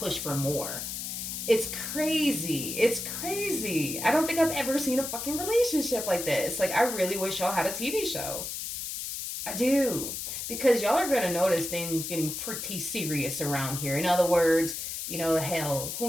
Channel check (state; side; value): noise; left; hiss, 5 dB below the sound